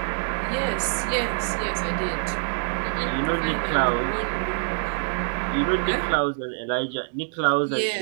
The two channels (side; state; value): left; silent; digital silence